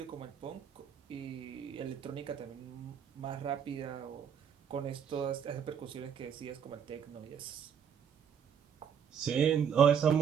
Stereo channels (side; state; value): left; quieter; 7.8 dB